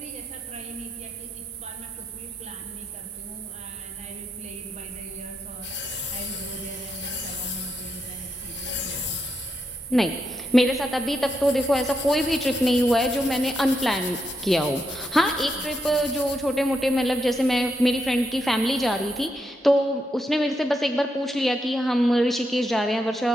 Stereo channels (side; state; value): both; normal; correlation 0.82